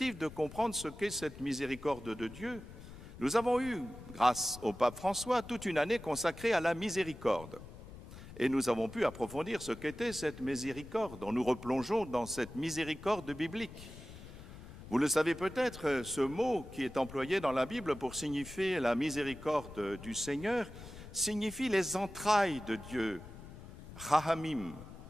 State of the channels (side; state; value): left; noise; rumble, 15 dB below the sound